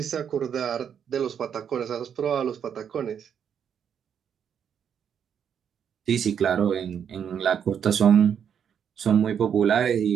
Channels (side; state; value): left; quieter; 8.1 dB